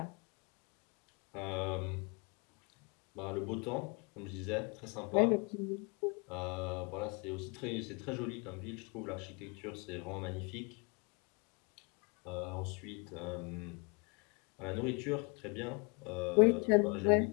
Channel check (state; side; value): quieter; right; 32.6 dB